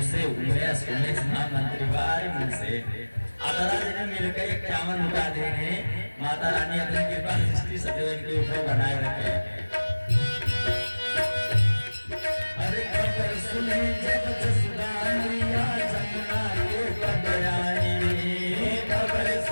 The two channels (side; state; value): both; inverted; correlation -1.00